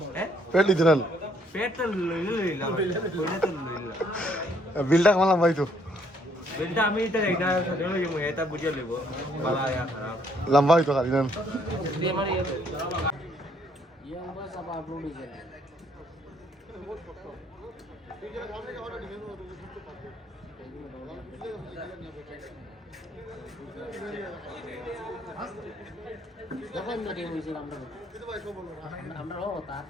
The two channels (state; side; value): normal; both; correlation 0.67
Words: হ্যাঁ প্যাড দিতে না প্যাড তো লইলাম কইলে তো লইলাম বিলটা কামালাম ভাই তো বেলটা আমি এটা এটা সাথে লই যাবো এটা বুঝে লইব বালা ইয়া খারাপ লম্বা হইতো খালি না দিয়ে মানে ইয়ে আমরা সব আপলোড হইছে যখন না দিয়ে হইছে আমরা ও তা